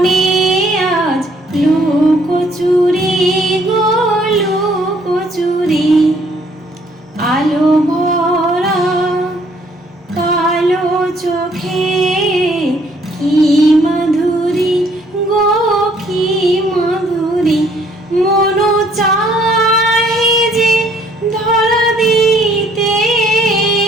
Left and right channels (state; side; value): normal; both; correlation 0.63